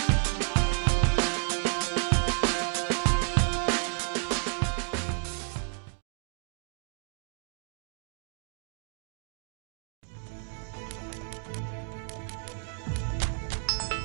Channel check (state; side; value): silent; left; 57 dB below the other